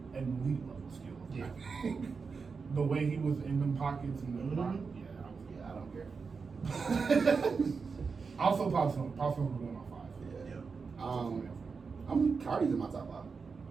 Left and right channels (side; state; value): left; quieter; 5.1 dB